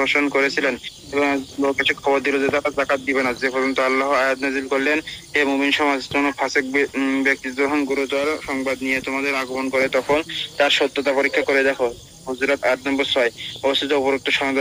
করেছিলেন এবং লোক এসে খবর দিল যে তারা যাকাত দিবে না, যে পর্যন্ত আল্লাহ আয়াত নাযিল করলেন, হে মুমিন সমাজ, কোন ফাসিক ব্যক্তি যখন গুরুতর সংবাদ নিয়ে তোমাদের আগমন করে তখন তার সত্যতা পরীক্ষা করে দেখো। হুজুরাত ৮ নম্বর ৬। অবস্থিত উপরোক্ত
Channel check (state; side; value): identical; both; correlation 1.00